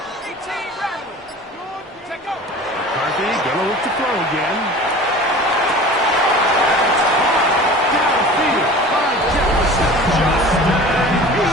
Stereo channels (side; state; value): both; normal; correlation 0.40